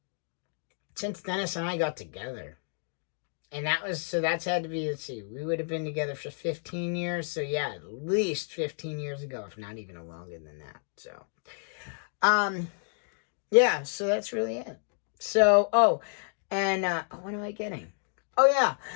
since Dennis and I got together. And that's had to be, let's see, we would have been together for 15 years. So yeah, at least 15 years ago, if not even longer than that. So, yeah, so that's really it. So, what am I getting? Oh yeah,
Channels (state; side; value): silent; right; digital silence